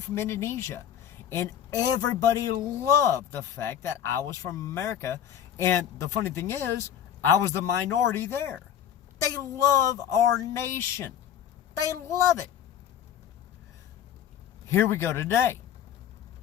from Indonesia. And everybody loved the fact that I was from America. And the funny thing is, I was the minority there. They love our nation. They love it. Here we go today.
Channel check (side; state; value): right; quieter; 9.8 dB